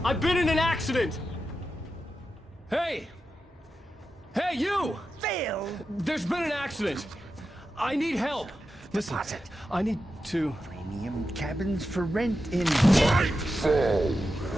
I've been in an accident! Hey! Hey, you! Phil! There's been an accident! I need help! Listen, I need to... Premium cabins for rent in...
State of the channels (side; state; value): both; normal; correlation 0.90